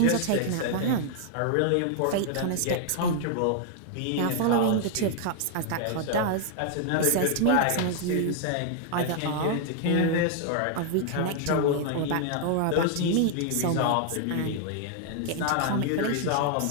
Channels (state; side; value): different; both; correlation 0.00